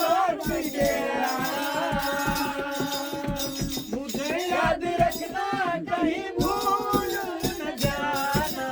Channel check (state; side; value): identical; both; correlation 1.00